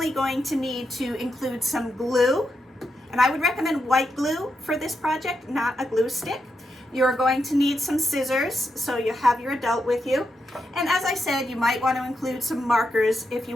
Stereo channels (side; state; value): both; normal; correlation 0.84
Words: going to need to include some glue, and I would recommend white glue for this project, not a glue stick. You're going to need some scissors, so you have your adult with you. And as I said, you might want to include some markers if